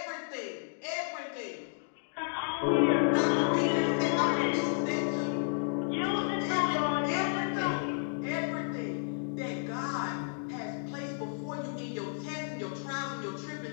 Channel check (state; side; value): silent; right; digital silence